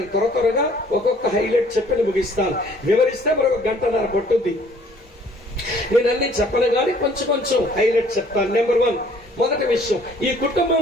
త్వరగా ఒక్కొక్క హైలైట్ చెప్పి ముగిస్తాను. వివరిస్తే మరొక 1 గంటన్నర పట్టుద్ది. నేను అన్ని చెప్పను కానీ కొంచెం హైలైట్ చెప్తాను. నెంబర్ 1, మొదటి విషయం, ఈ కుటుంబం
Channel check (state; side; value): normal; both; correlation 0.57